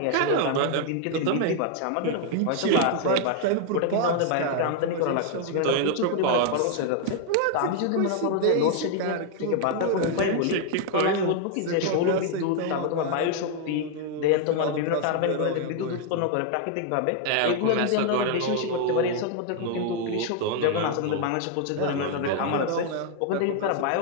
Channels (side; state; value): both; different; correlation 0.00